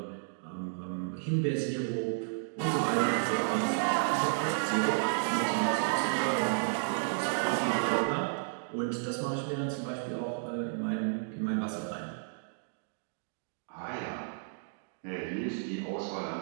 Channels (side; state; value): left; silent; digital silence